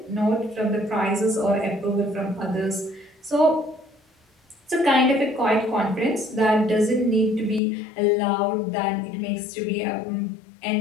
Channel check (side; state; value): right; drops out; at 7.6 s